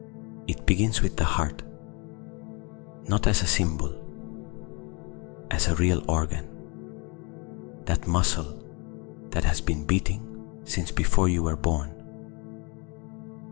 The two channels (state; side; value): quieter; right; 30.3 dB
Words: It begins with the heart, not as a symbol, as a real organ, that muscle that has been beating since before you were born,